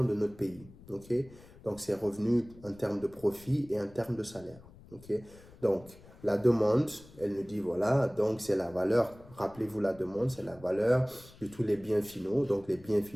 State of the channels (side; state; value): left; noise; rumble, 22 dB below the sound